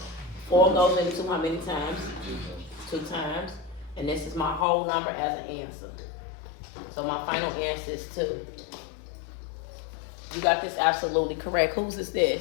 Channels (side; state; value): right; drops out; at 4.7 s